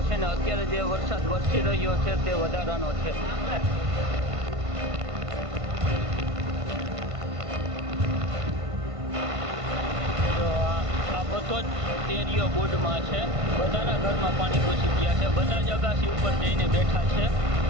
છે ને અત્યારે જે વરસાદ વરસી રહ્યો છે તે વધારાનો છે. આ બધો જ એરિયો બુડમાં છે. બધાના ઘરમાં પાણી ઘૂસી ગયા છે. બધા જ અગાસી ઉપર જઈને બેઠા છે.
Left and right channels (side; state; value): left; late; 1.5 ms